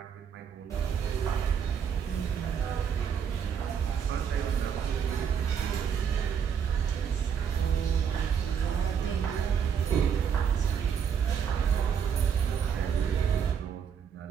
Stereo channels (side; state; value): left; quieter; 7.5 dB